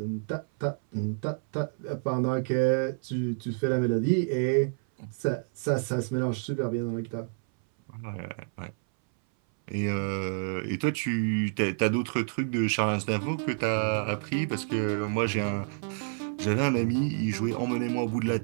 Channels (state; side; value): silent; left; 59 dB below the other